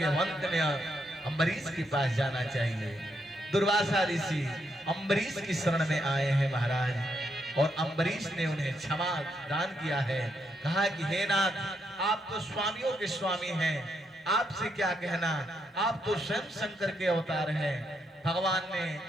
अंत में अम्बरीश के पास जाना चाहिए। दुर्वासा ऋषि अम्बरीश की शरण में आए हैं महाराज, और अम्बरीश ने उन्हें क्षमा दान किया है। कहा कि हे नाथ, आप तो स्वामियों के स्वामी हैं, आपसे क्या कहना, आप तो स्वयं शंकर के अवतार हैं। भगवान ने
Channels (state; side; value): normal; both; correlation 0.78